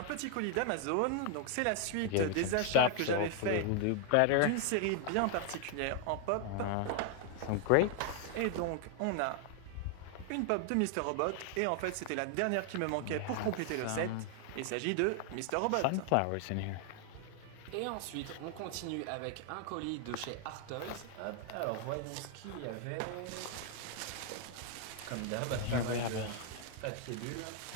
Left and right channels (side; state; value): both; different; correlation 0.00